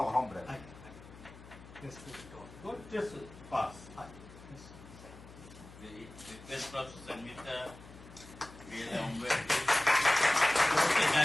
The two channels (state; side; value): noise; left; hum, 18 dB below the sound